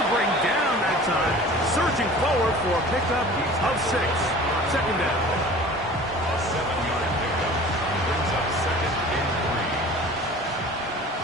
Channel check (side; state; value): both; normal; correlation 0.43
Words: to bring down that time. Surging forward for a pickup of 6. Second down. A 7-yard pickup brings up 2nd and 3.